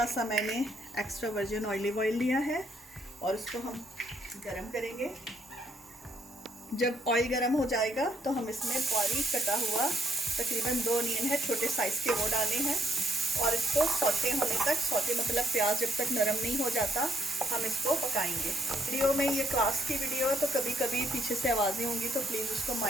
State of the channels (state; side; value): normal; both; correlation 0.73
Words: सा मैंने एक्स्ट्रा वर्जिन ऑलिव ऑयल लिया है और उसको हम गरम करेंगे। जब ऑयल गरम हो जाएगा तो हम इसमें बारीक कटा हुआ तकरीबन 2 अनियन है छोटे साइज़ के, वो डाले हैं और इसको सौते होने तक, सौते मतलब प्याज जब तक नरम नहीं हो जाता हम इसको पकाएंगे। वीडियो में ये क्लास की वीडियो है तो कभी कभी पीछे से आवाज़ें होंगी तो प्लीज़ उसको